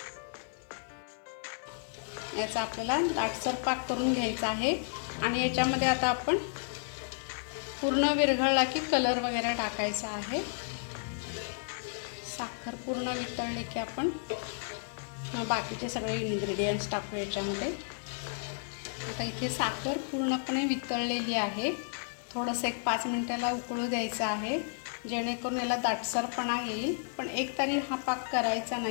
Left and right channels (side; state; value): right; silent; digital silence